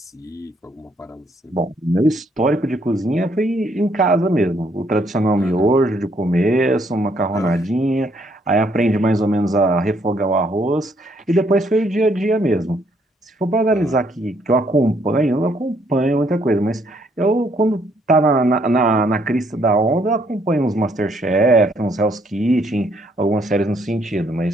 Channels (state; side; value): normal; both; correlation 0.69